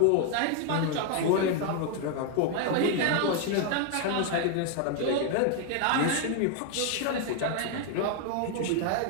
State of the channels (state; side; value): different; both; correlation 0.01